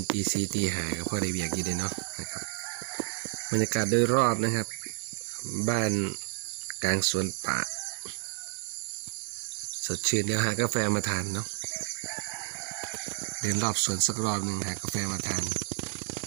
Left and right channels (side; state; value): left; silent; 57 dB below the other